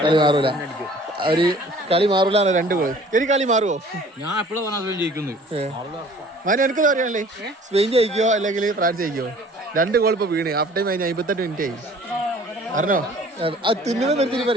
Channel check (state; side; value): normal; both; correlation 0.51